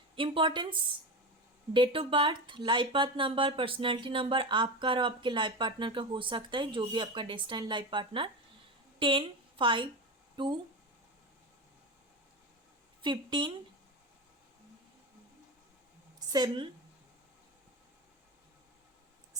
Importance, date of birth, life path number, personality number आपका और आपके लाइफ पार्टनर का हो सकता है, जो भी आपका डेस्टाइन लाइफ पार्टनर। 10, 5, 2, 15, 7,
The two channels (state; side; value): normal; both; correlation 0.21